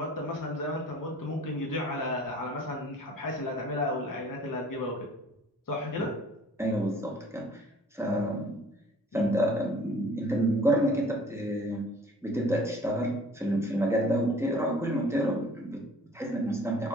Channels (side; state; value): both; normal; correlation 0.51